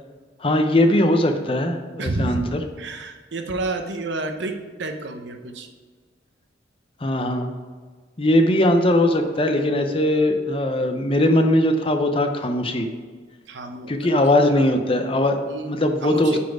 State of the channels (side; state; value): both; normal; correlation 0.60